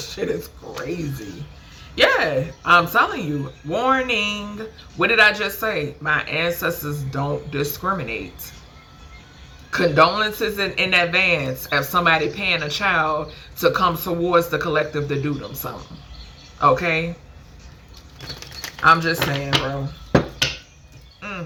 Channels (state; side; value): identical; both; correlation 1.00